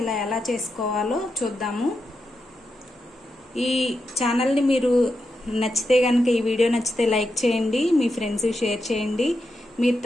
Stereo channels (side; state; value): both; normal; correlation 0.86